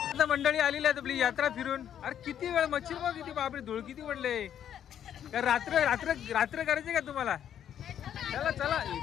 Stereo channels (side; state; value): right; quieter; 9.7 dB